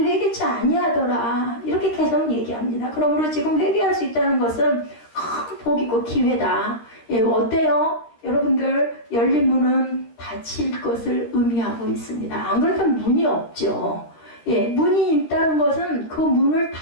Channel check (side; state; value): right; late; 13 ms